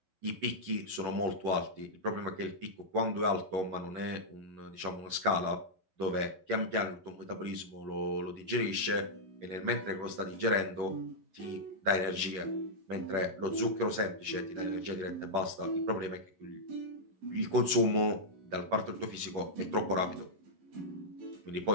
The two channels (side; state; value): left; late; 11 ms